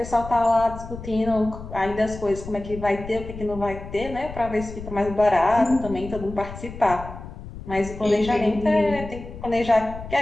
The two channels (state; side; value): noise; left; rumble, 12 dB below the sound